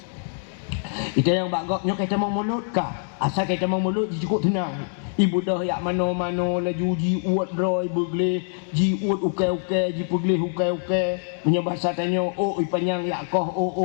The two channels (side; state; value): right; silent; digital silence